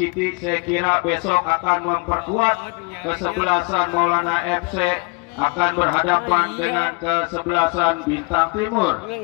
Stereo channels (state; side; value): quieter; right; 30.4 dB